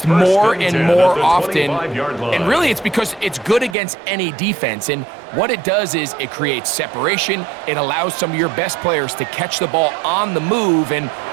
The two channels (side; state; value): left; drops out; at 3.8 s